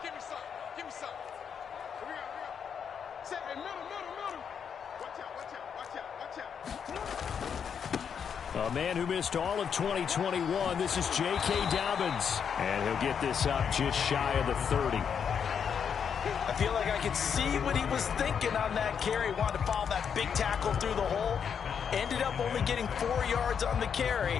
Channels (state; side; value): quieter; right; 7.3 dB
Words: A man who missed all of 2021, this is J.K. Dobbins. And he'll get this up just shy of the 30. I feel like I could see what he was thinking on that carry. Wanted to follow that big tackle through the hole. Ended up only getting 4 yards on the